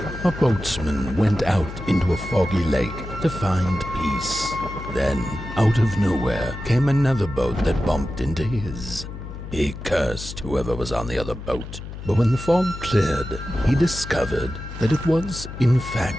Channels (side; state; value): left; noise; hum, 10 dB below the sound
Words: A boatsman went out into a foggy lake to find peace. Then, out of nowhere, came another boat that bumped into his. He cursed whoever was on the other boat, but when the fog cleared, he discovered that it was, in fact,